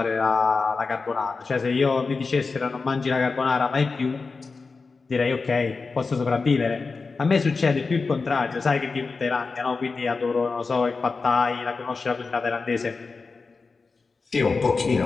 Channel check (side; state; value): right; quieter; 4.3 dB